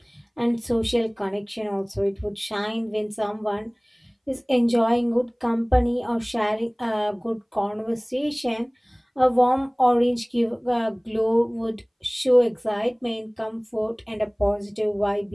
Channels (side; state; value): both; identical; correlation 1.00